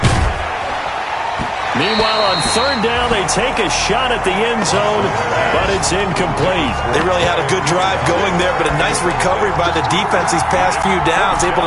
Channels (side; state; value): both; identical; correlation 1.00